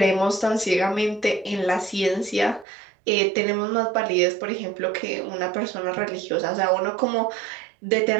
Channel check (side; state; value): left; drops out; at 2.7 s